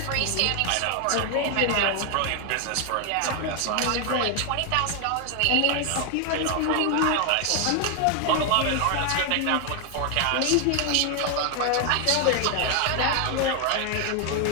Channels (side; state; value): both; different; correlation 0.00